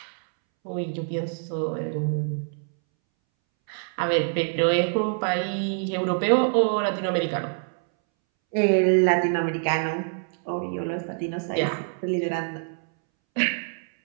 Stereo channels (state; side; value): silent; left; 61 dB below the other